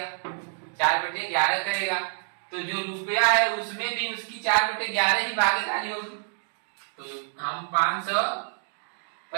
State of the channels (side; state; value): left; silent; digital silence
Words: 4/11 करेगा। तो जो रुपया है उसमें भी उसकी 4/11 ही भागीदारी होगी। तो हम